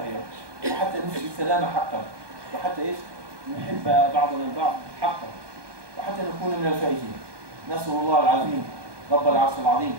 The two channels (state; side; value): late; left; 1.2 ms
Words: وحتى نفسي السلام حقا وحتى ايش؟ نحب بعضنا البعض حقا وحتى نكون من الفائزين. نسأل الله العظيم رب العرش العظيم